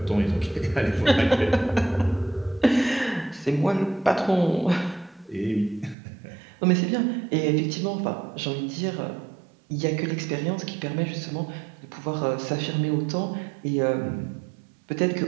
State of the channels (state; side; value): drops out; left; at 6.0 s